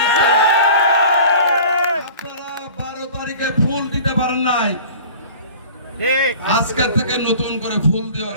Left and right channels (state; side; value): inverted; both; correlation -0.42